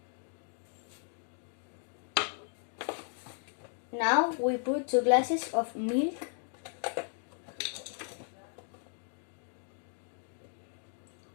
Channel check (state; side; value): silent; right; 54 dB below the other